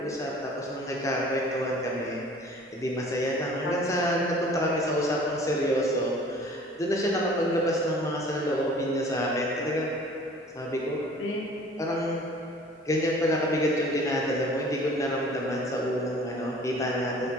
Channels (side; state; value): both; normal; correlation 0.49